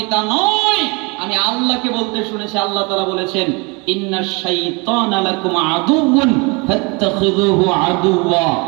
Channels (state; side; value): quieter; left; 29.4 dB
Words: তা নই। আমি আল্লাহকে বলতে শুনেছি, আল্লাহ তাআলা বলেছেন, ইন্নাশ শাইতানা লাকুম আদুউন ফাত্তাখিযুহু আদুওয়া।